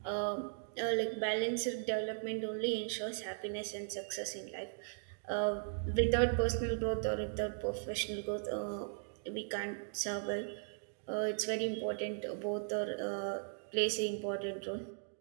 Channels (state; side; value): silent; left; digital silence